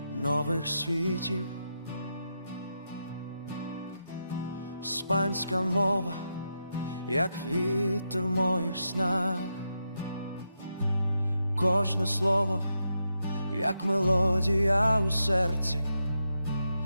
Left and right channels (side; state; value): both; inverted; correlation -0.85